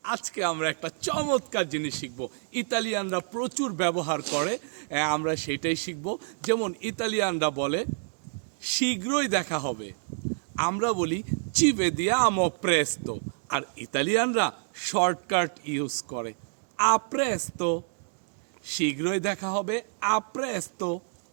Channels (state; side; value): silent; left; digital silence